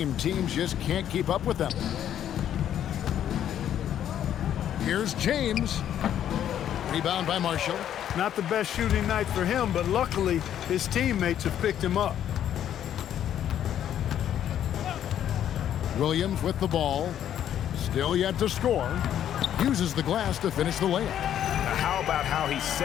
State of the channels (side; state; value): right; quieter; 10.4 dB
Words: teams just can't keep up with them. Here's James. Rebound by Marshall. Not the best shooting night for him, but luckily his teammates have picked him up. Williams with the ball. Still yet to score. Uses the glass to finish the layup. How about how he